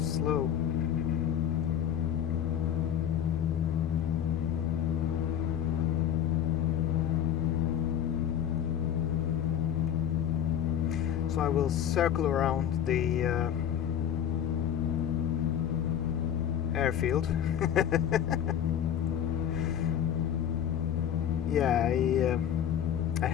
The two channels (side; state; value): right; quieter; 9.6 dB